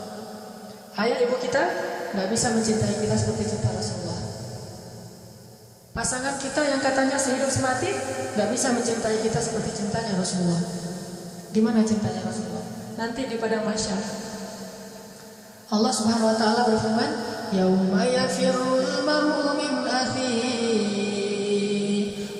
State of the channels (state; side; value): identical; both; correlation 1.00